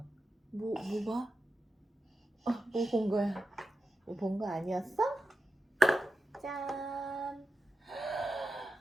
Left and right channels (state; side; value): normal; both; correlation 0.91